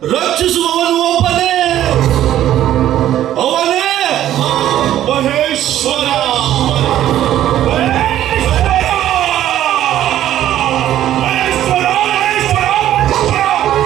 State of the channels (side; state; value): left; quieter; 12.3 dB